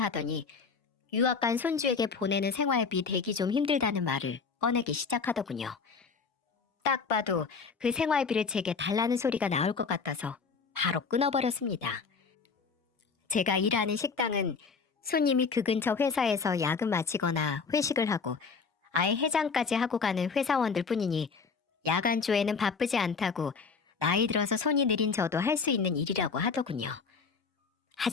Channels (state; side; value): quieter; right; 5.2 dB